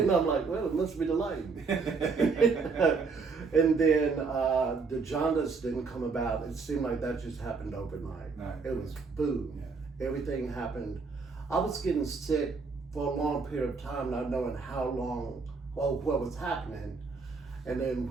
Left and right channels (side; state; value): left; quieter; 4.7 dB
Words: I'm like, well, it must be the light. And then the jaundice didn't come about. It seemed like that just happened overnight. No. It was boom. Yeah. Everything happened. I was getting sick for a long period of time, not knowing how long or what was happening. And then